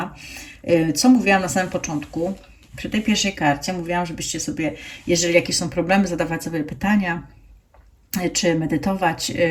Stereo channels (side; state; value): both; identical; correlation 1.00